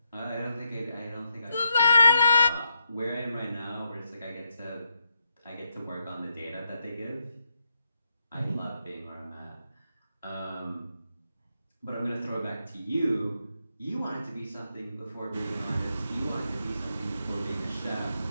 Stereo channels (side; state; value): both; inverted; correlation -0.82